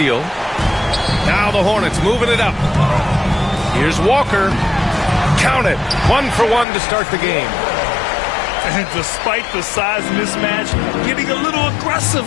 Now the Hornets moving it up. Here's Walker. Count it. 1 for 1 to start the game. And despite the size mismatch, getting a little aggressive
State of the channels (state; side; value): drops out; right; at 6.7 s